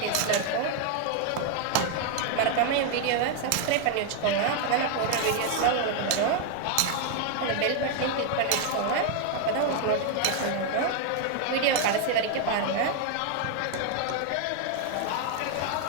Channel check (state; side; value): different; both; correlation 0.00